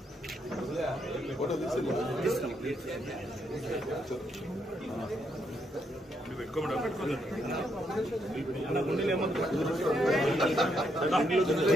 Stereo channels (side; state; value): both; normal; correlation 0.76